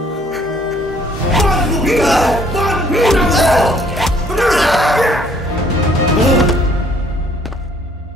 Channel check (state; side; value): normal; both; correlation 0.61